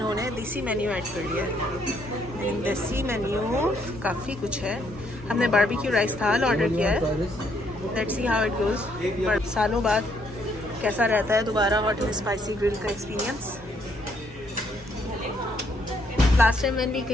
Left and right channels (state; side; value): normal; both; correlation 0.71